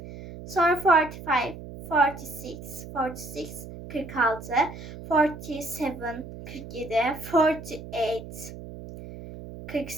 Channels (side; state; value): right; noise; hum, 12 dB below the sound